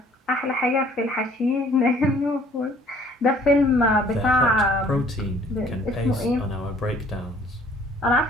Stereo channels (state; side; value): normal; both; correlation 0.57